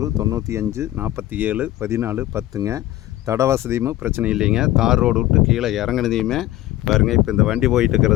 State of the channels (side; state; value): right; quieter; 15.1 dB